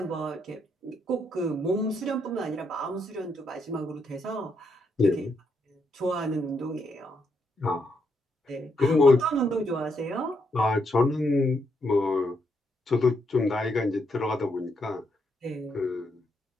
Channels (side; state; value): both; normal; correlation 0.77